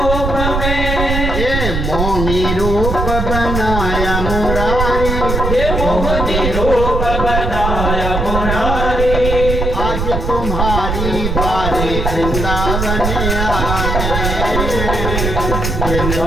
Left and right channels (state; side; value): noise; right; rumble, 1 dB below the sound